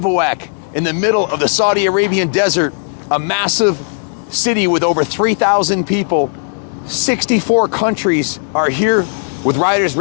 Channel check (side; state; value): right; silent; 59 dB below the other